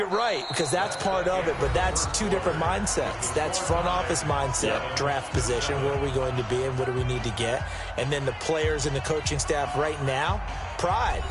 right, because that's part of it, but that's two different mindsets. That's front office mindset, draft position, where are we going to be and what do we need to get? And then the players and the coaching staff right now, pride.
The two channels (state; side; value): identical; both; correlation 1.00